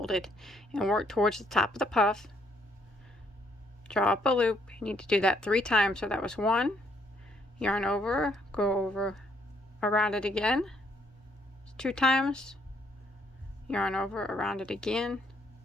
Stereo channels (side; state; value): both; normal; correlation 0.69